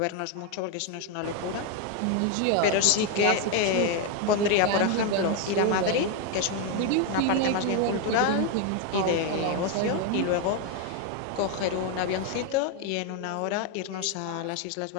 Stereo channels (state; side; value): different; both; correlation 0.01